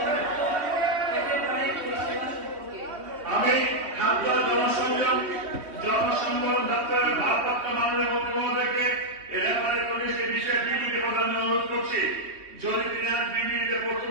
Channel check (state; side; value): late; left; 3.2 ms